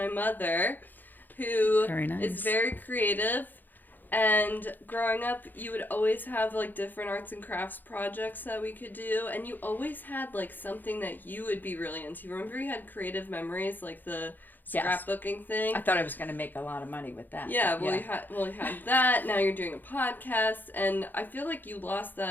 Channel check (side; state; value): right; late; 0.088 ms